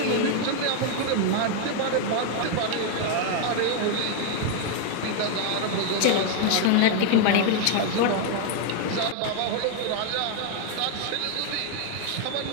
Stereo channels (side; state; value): both; different; correlation 0.00